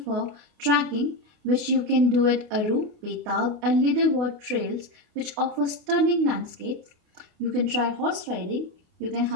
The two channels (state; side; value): late; left; 28 ms